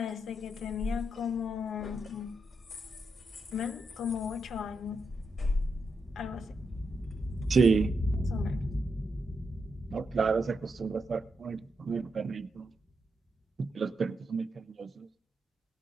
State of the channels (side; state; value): both; normal; correlation 0.83